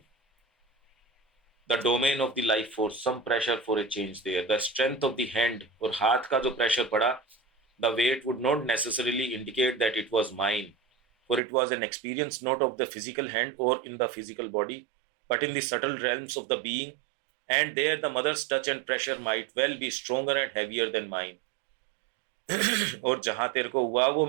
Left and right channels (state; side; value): drops out; left; at 11.4 s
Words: The domain of the life force, some pressure for a change there. The strength of the hand, और हाथ का जो प्रेशर पड़ा, the weight would not necessarily indicate that it was mine, for it was an experience not of the physical hand or in the physical body, but in the subtle realms of the being, and there the mother's touch and pressure might well be stronger and heavier than mine. और जहां तेरे को हुआ वो